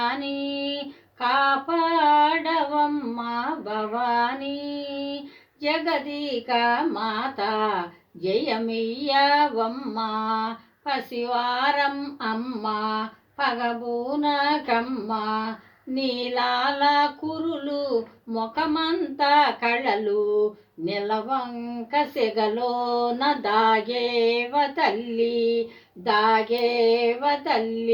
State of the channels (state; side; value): identical; both; correlation 1.00